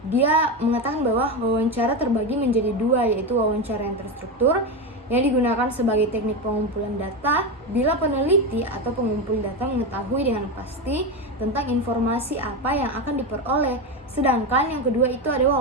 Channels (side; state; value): both; normal; correlation 0.15